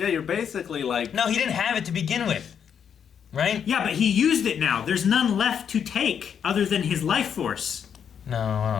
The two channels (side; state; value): right; quieter; 7.9 dB